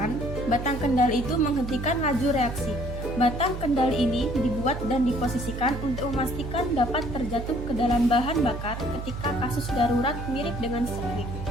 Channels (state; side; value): noise; right; hum, 7 dB below the sound